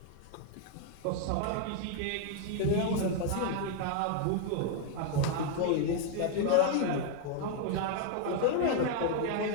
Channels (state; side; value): different; both; correlation 0.00